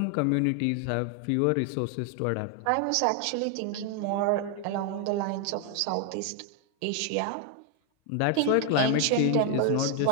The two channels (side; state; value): both; different; correlation 0.00